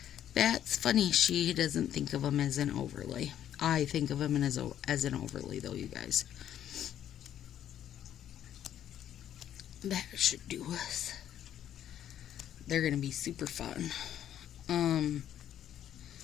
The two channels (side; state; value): right; quieter; 10.7 dB